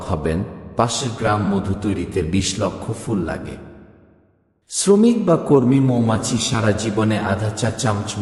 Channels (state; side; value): identical; both; correlation 1.00